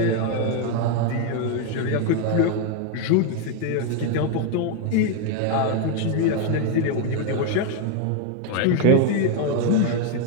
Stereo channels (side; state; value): both; different; correlation 0.01